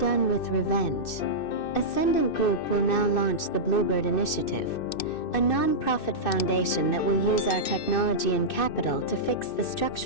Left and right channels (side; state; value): right; late; 2.6 ms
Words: with revenge. Ascendant Group will now launch the Bluebird Initiative, a non-profit foundation that will use our technology and capital to fix the